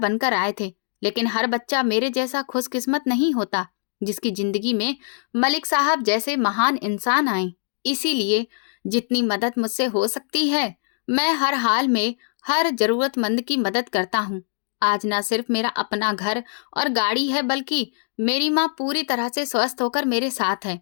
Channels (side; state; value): right; silent; digital silence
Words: आए थे, लेकिन हर बच्चा मेरे जैसा खुशकिस्मत नहीं होता जिसकी जिंदगी में मलिक साहब जैसे महान इंसान आए। इसीलिए जितनी मदद मुझसे हो सकती है, मैं हर हाल में हर जरूरतमंद की मदद करता हूँ। आज ना सिर्फ मेरा अपना घर और गाड़ी है, बल्कि मेरी माँ पूरी तरह से स्वस्थ होकर मेरे साथ है।